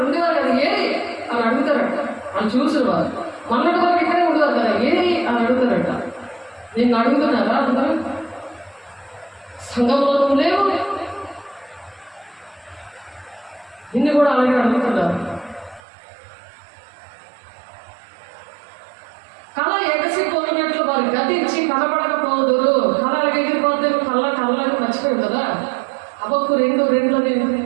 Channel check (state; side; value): drops out; left; at 15.8 s